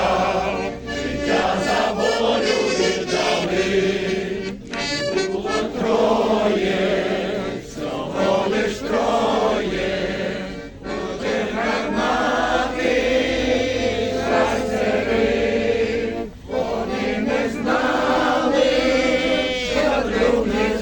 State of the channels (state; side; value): identical; both; correlation 1.00